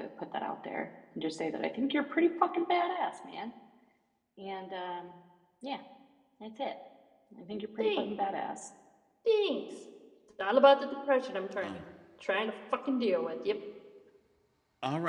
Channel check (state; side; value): identical; both; correlation 1.00